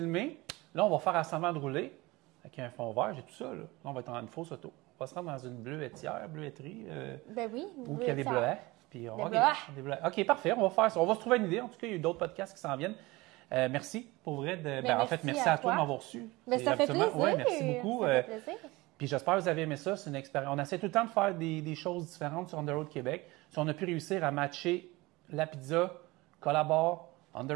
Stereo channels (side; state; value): left; quieter; 21.7 dB